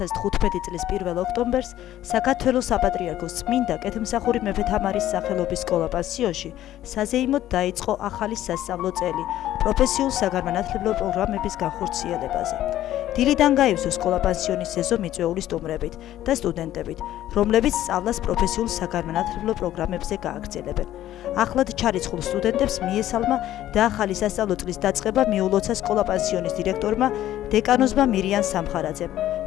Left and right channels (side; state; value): right; quieter; 13.1 dB